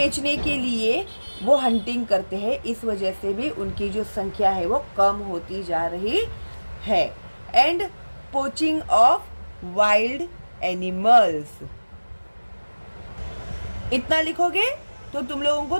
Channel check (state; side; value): inverted; both; correlation -1.00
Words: के लिए वो हंटिंग करते हैं, इस वजह से भी उनकी जो संख्या है वो कम होती जा रही है। And poaching of wild animals, इतना लिखोगे तो तुम लोगों को